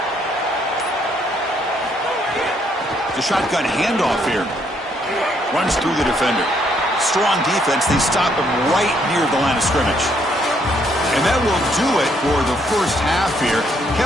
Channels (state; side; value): normal; both; correlation 0.70